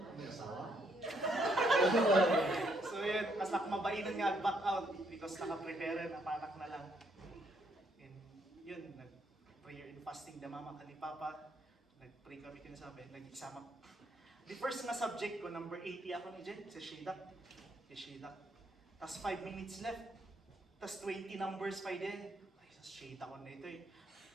So yun, mas nakmabainan nga ang back-out because nakaprepare na panak na lang. And yun, nag-prayer and fasting na mama ka ni Papa. Nag-pray kami kinasabi, nag-exam. The first na subject ko, number 80 ako ni Jen, sa Shedak. Tapos 5 minutes left. Tapos 20 numbers pa din. Shade ako na ito eh.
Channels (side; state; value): both; normal; correlation 0.72